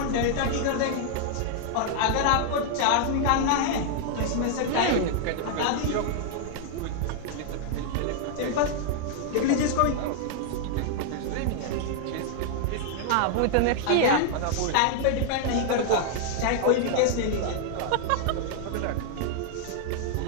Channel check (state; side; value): different; both; correlation -0.01